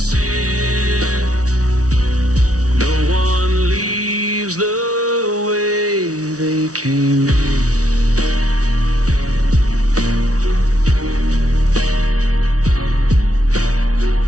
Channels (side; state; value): left; late; 0.67 ms